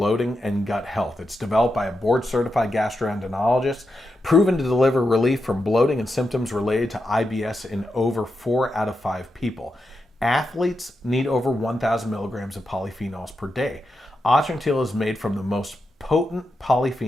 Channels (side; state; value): both; normal; correlation 0.87